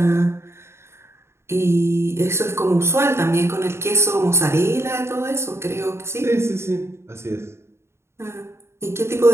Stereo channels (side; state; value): left; late; 0.13 ms